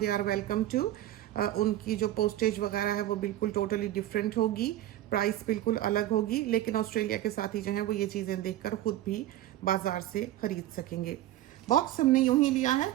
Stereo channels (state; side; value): quieter; left; 13.7 dB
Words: आर वेलकम टू। उनकी जो पोस्टेज वगैरह है वो बिल्कुल टोटली डिफरेंट होगी, प्राइस बिल्कुल अलग होगी, लेकिन ऑस्ट्रेलिया के साथी जो हैं वो ये चीज़ें देखकर ख़ुद भी बाज़ार से ख़रीद सकेंगे। बॉक्स हमने यूं ही लिया है